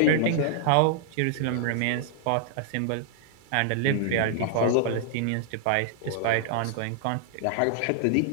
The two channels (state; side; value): different; both; correlation -0.01